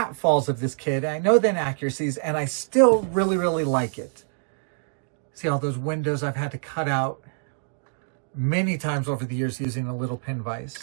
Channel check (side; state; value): left; silent; digital silence